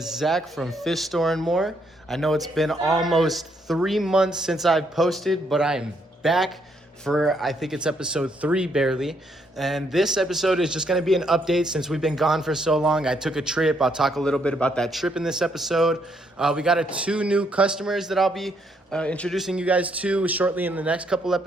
Zach from Fish Store and More. I know it's been almost 3 months since I've posted, but I am back for, I think it's episode 3 barely. And this episode is just going to be an update since we've been gone for so long. I took a trip. I'll talk a little bit about that trip in this episode. We got 2 new customers that I'll be introducing you guys to shortly in the next couple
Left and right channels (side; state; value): both; normal; correlation 0.73